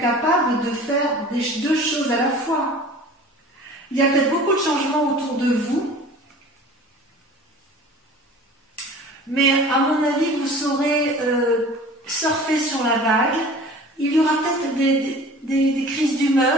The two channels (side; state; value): both; normal; correlation 0.43